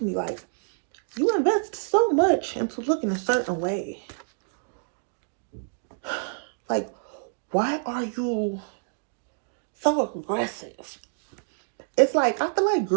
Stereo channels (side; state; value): left; silent; digital silence